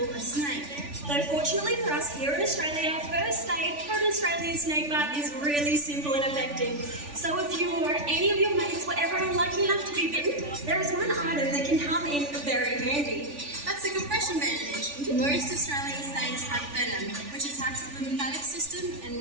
a snake. Though fortunately for us here in Australia, first aid for an Australian snake bite is really simple and effective. So if you or any of your mates were ever unlucky enough to be bitten, there is one item that can come in very handy. That's a compression bandage. Most Australian snakes have venom, which attacks the lymphatic system and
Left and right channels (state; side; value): late; left; 3.4 ms